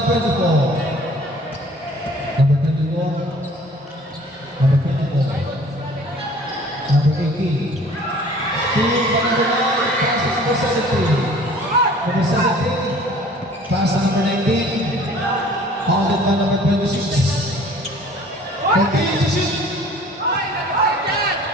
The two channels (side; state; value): both; normal; correlation 0.50